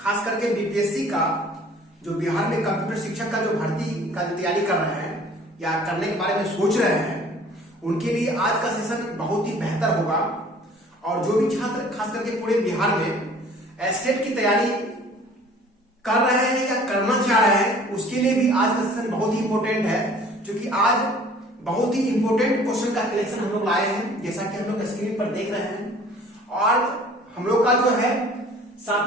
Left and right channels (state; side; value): normal; both; correlation 0.51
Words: करके बीपीएससी का जो बिहार में कंप्यूटर शिक्षक का जो भर्ती का तैयारी कर रहे हैं या करने के बारे में सोच रहे हैं उनके लिए आज का सेशन बहुत ही बेहतर होगा। और जो भी छात्र खास करके पूरे बिहार में एस्टेट की तैयारी कर रहे हैं या करना चाह रहे हैं उसके लिए भी आज का सेशन बहुत ही इंपॉर्टेंट है, क्योंकि आज बहुत ही इंपॉर्टेंट क्वेश्चन का कलेक्शन हम लोग लाए हैं, जैसा कि हम लोग स्क्रीन पर देख रहे हैं। और हम लोग का जो है